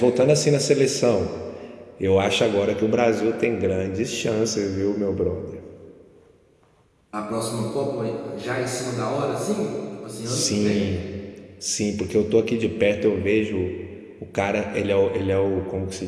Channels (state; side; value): identical; both; correlation 1.00